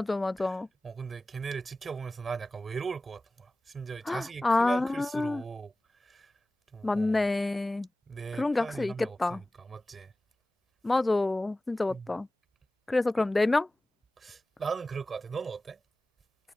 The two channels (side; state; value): both; normal; correlation 0.97